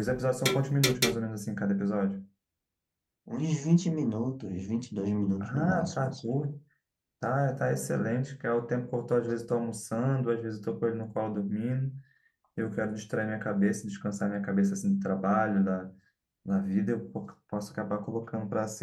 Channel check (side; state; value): both; identical; correlation 1.00